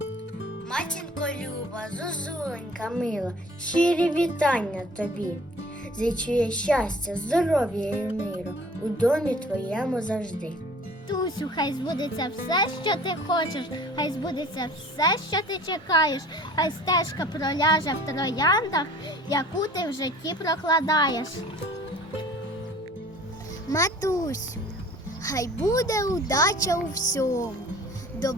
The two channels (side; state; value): both; normal; correlation 0.48